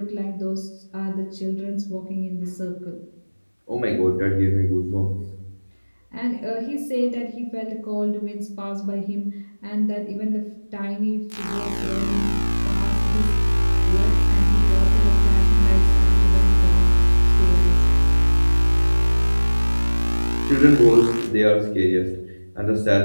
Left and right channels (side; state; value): both; inverted; correlation -1.00